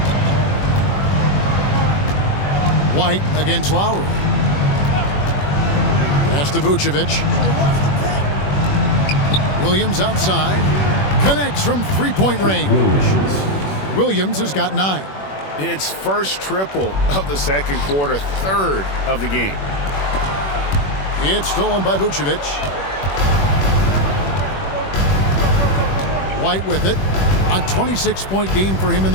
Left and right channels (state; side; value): late; right; 21 ms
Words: White against Lowry. Pass to Vucevic. Williams outside. Connects from three-point range. Williams has got 9. It's first triple of the second quarter, third of the game. It's stolen by Vucevic. White with it. A 26-point game for him in